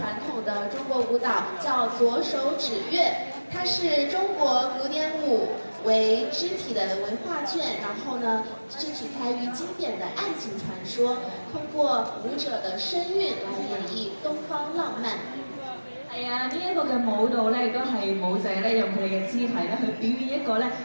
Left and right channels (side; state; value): both; inverted; correlation -1.00